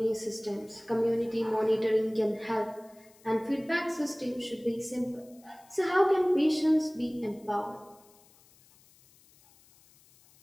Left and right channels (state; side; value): noise; left; hiss, 28 dB below the sound